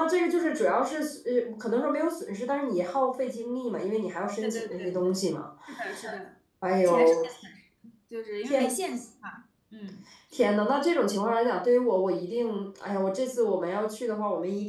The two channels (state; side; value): identical; both; correlation 1.00